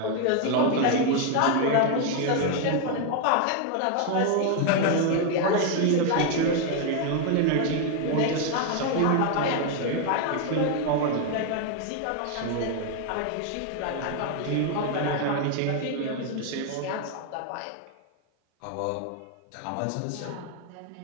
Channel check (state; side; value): different; both; correlation 0.01